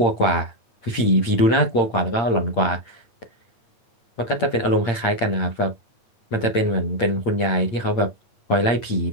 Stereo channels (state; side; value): late; right; 8.7 ms